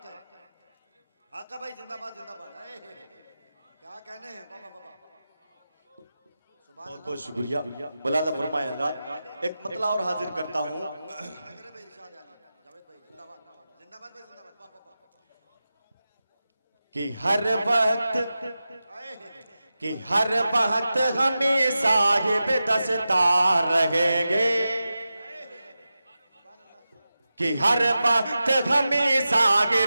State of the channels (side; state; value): both; inverted; correlation -0.93